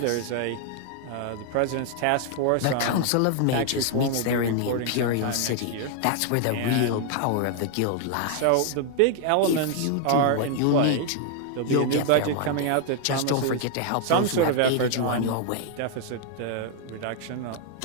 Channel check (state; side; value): different; both; correlation 0.00